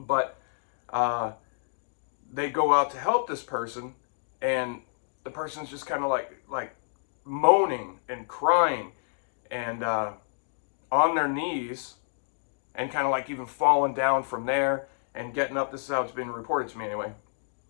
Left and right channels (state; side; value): silent; right; digital silence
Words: they go out to help this person, and the person's just kind of like moaning and crying and on their knees, and kind of like even falling down from there and getting up. This is how it's been reported to me anyway.